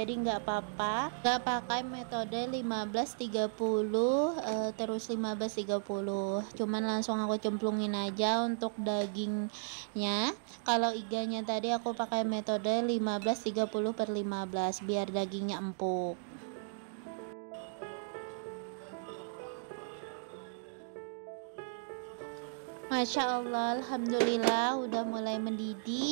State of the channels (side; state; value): left; silent; digital silence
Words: nggak apa-apa, nggak pakai metode 15-30 terus 15-30, cuman langsung aku cemplungin aja untuk dagingnya. Kalau iganya tadi aku pakai metode 15-30/15 biar dagingnya empuk. Masya Allah, alhamdulillah udah mulai